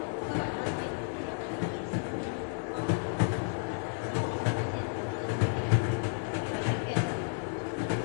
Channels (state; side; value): silent; right; 56 dB below the other